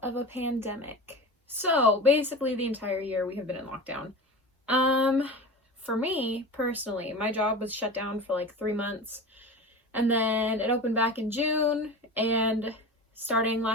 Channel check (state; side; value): normal; both; correlation 0.31